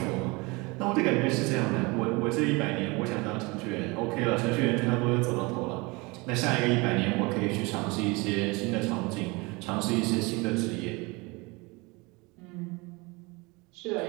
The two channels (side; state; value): left; quieter; 25.9 dB